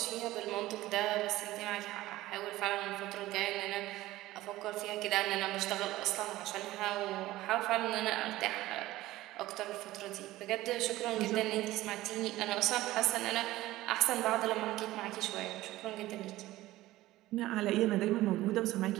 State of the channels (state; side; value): quieter; left; 16.7 dB